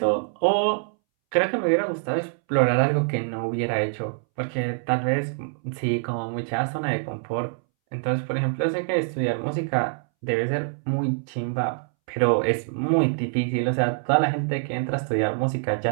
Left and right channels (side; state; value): left; silent; 62 dB below the other